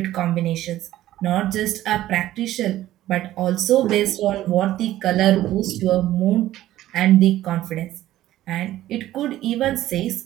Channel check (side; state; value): left; quieter; 14.2 dB